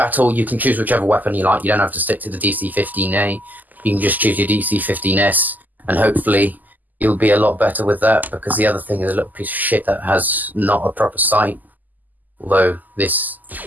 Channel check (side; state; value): left; late; 0.083 ms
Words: you can choose whichever weapon you like. You don't have to stick to the DC-15A. You can just choose your DC-15S, and hopefully you'll be a lot better with that, because the other thing is a little piece of shit that has not a proper sight. Although this